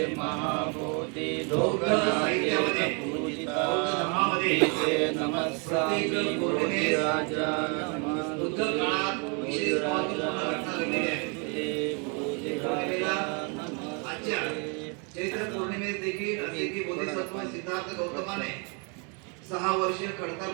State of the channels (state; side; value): quieter; left; 35.1 dB